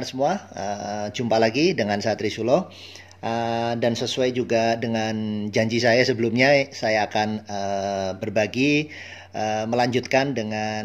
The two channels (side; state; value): both; identical; correlation 1.00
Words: semua? Jumpa lagi dengan saya Trisulo. Dan sesuai juga dengan janji saya sebelumnya, saya akan berbagi, melanjutkan